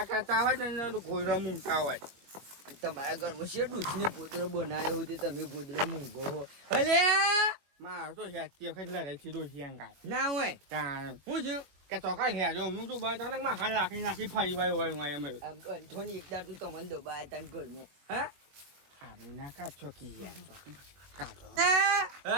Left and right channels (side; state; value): left; late; 21 ms